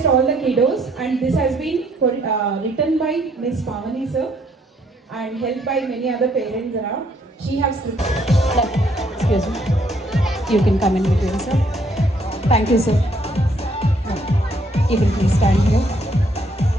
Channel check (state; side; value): normal; both; correlation 0.68